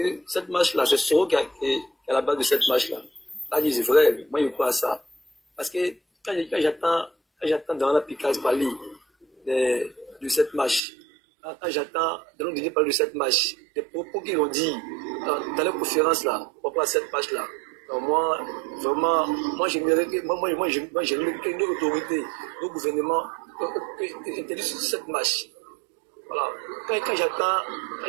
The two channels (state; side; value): drops out; left; at 10.8 s